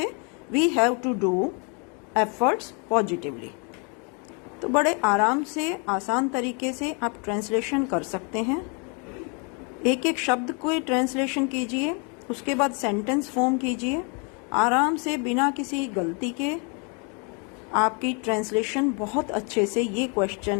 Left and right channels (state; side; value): quieter; right; 35.6 dB